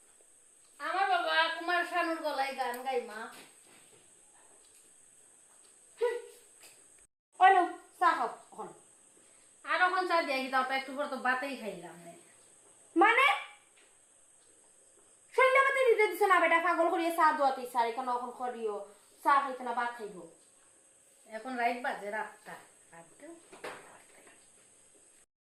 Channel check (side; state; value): both; identical; correlation 1.00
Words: আমার বাবা কুমার শানুর গলায় গান গাই মা ওনো চা খাও এখন আর এখন চা দিয়ে দাও একটু পর তো বাতেই খাইলাম না মানে সন্ধ্যাবাতে দিতে দিছ না বেটা পাগল করিয়ে চা দোয়াতে ইচ্ছা এখানে এখন করিও চা খাইতে না ভাত খাইব এখন রাইট বাজে রাতটা